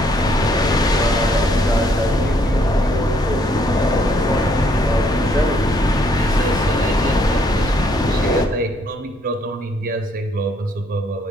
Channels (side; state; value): both; normal; correlation 0.68